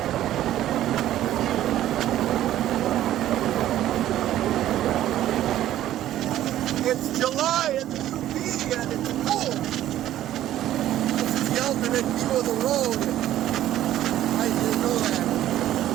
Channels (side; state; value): left; quieter; 13.0 dB